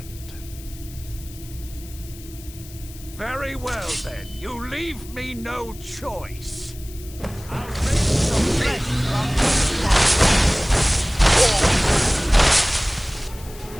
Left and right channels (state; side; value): noise; left; hiss, 18 dB below the sound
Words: Very well, then. You leave me no choice. I'll bring some flesh from